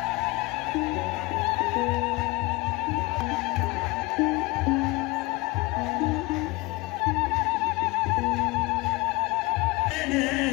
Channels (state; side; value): quieter; right; 23.0 dB